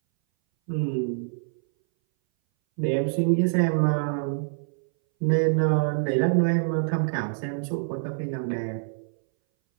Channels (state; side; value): silent; left; 60 dB below the other